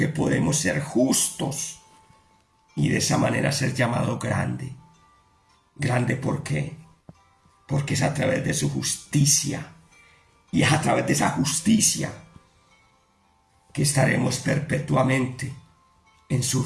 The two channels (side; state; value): both; identical; correlation 1.00